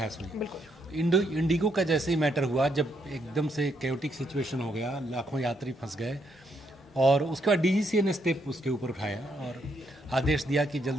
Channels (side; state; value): both; normal; correlation 0.76